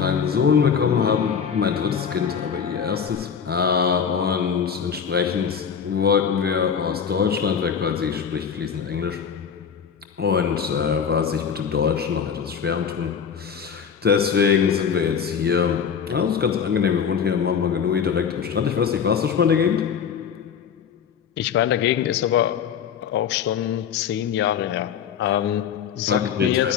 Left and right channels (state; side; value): quieter; right; 7.2 dB